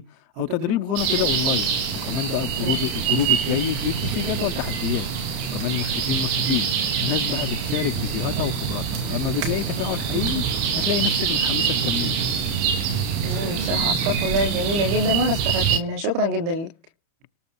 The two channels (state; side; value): late; left; 31 ms